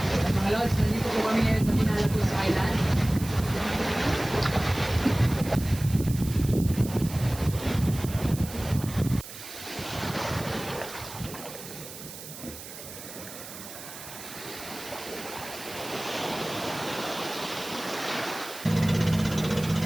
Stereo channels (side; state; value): right; noise; hiss, 13 dB below the sound